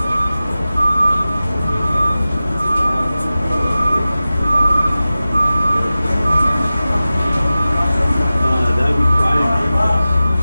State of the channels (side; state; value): both; inverted; correlation -0.96